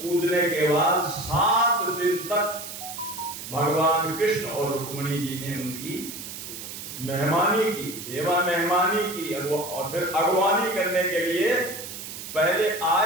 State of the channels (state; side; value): noise; right; hiss, 10 dB below the sound